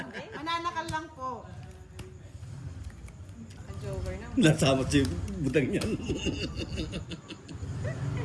Mananakal lang po. Joker na. Nasama si Butang yan.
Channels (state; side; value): identical; both; correlation 1.00